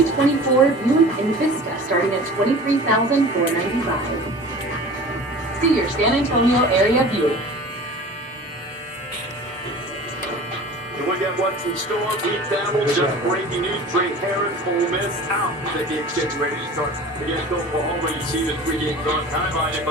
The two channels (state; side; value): normal; both; correlation 0.40